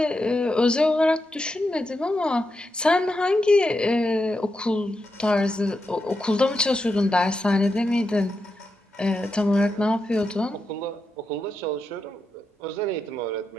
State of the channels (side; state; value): both; normal; correlation 0.86